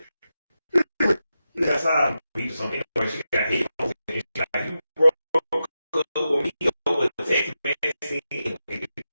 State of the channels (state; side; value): inverted; both; correlation -0.90